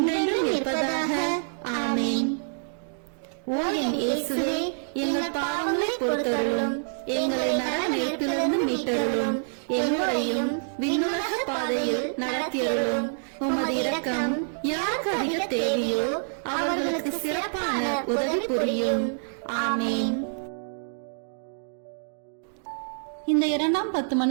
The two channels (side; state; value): left; silent; digital silence